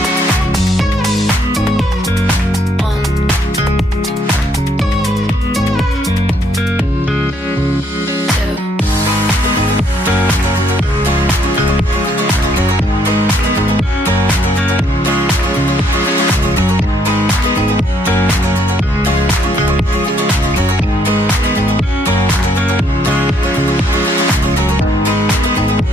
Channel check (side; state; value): both; normal; correlation 0.70